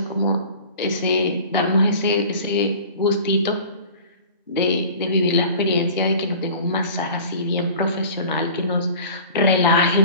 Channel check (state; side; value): inverted; both; correlation -0.42